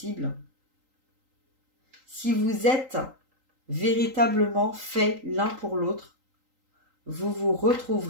Si vous êtes véritablement fait l'un pour l'autre, vous vous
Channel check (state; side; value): late; left; 3.8 ms